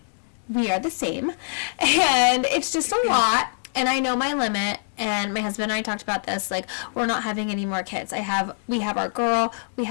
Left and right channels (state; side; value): silent; right; digital silence